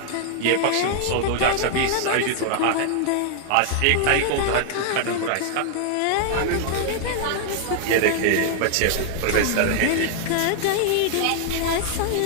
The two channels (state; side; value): different; both; correlation 0.00